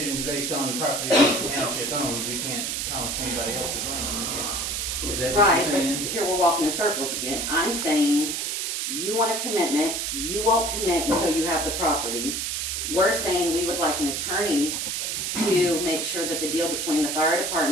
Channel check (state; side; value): noise; right; hiss, 1 dB below the sound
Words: based on the property that the township owns. We can't promise anybody else's land, yeah. Is that what Right, you're but saying? here we're walking in circles again. I'm saying, you want a commitment, you won't commit until you have the property. We're saying we would like an attorney to make sure that the deal between the fire